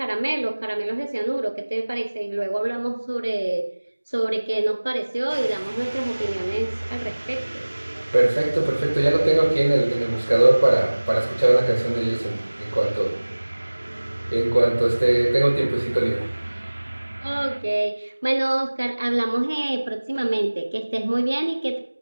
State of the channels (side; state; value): both; inverted; correlation -1.00